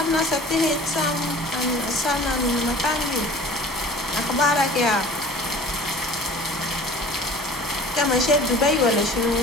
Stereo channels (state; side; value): normal; both; correlation 0.45